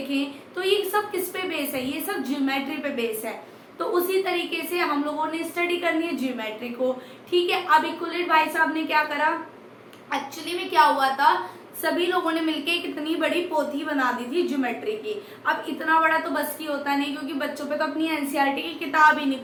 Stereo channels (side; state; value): both; identical; correlation 1.00